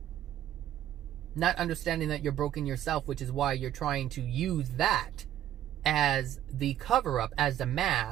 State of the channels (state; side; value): quieter; left; 11.8 dB